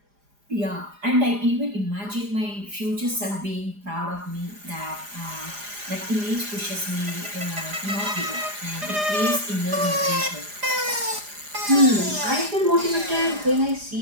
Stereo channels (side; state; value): left; late; 4.9 ms